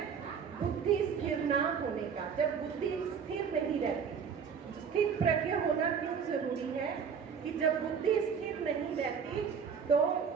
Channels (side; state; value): left; quieter; 6.7 dB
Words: बुद्धि स्थिर ना होने का। जब बुद्धि स्थिर नहीं रहती, स्थित प्रज्ञ होना क्यों जरूरी है कि जब बुद्धि स्थिर नहीं रहती तो